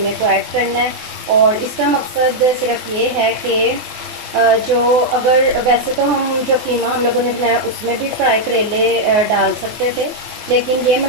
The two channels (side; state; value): left; late; 24 ms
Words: को ऐड करना है और इसका मकसद सिर्फ ये है कि जो, अगर वैसे तो हम जो कीमा हम लोगों ने बनाया उसमें भी फ्राई करेले डाल सकते थे, लेकिन ये